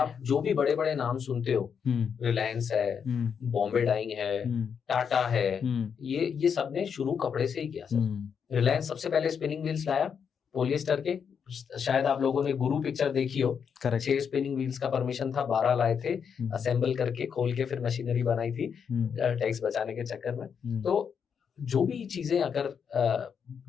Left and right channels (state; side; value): quieter; right; 7.0 dB